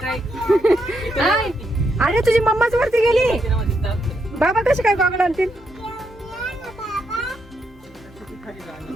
हाय. अरे तुझी मम्माच वरती गेली, बाबा कशी काय गॉगल आणतील?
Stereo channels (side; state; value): both; normal; correlation 0.79